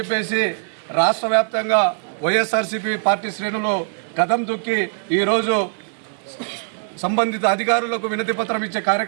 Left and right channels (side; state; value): left; silent; digital silence